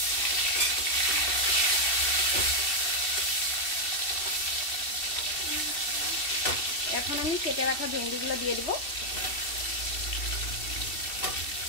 এখন আমি কেটে রাখা ভেন্ডিগুলো দিয়ে দিব।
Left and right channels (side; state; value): right; late; 2.7 ms